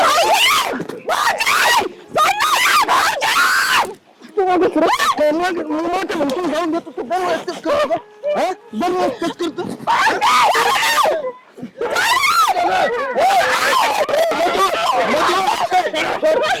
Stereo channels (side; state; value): both; identical; correlation 1.00